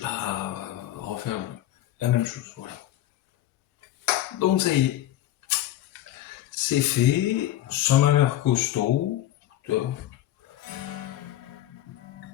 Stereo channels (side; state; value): right; quieter; 13.5 dB